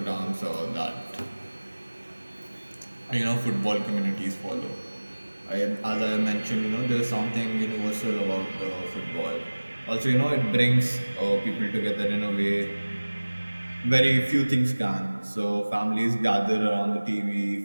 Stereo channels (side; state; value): both; inverted; correlation -1.00